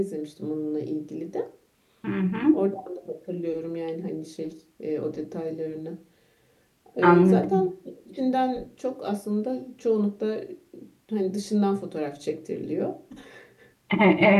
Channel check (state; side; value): identical; both; correlation 1.00